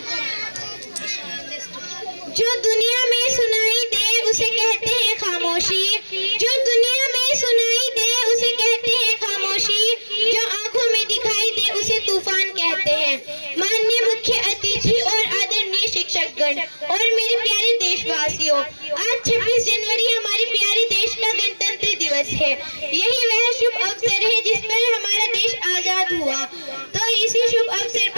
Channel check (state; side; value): inverted; both; correlation -1.00